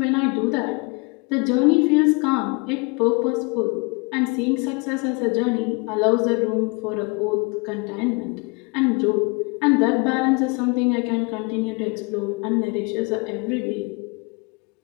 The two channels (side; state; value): right; quieter; 30.3 dB